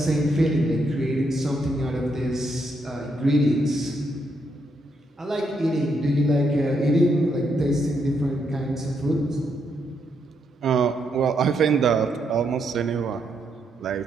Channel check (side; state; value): both; normal; correlation 0.78